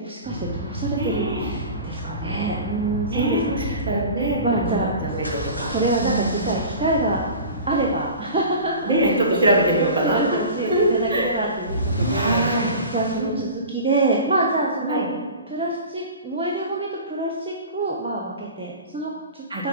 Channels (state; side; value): inverted; both; correlation -0.37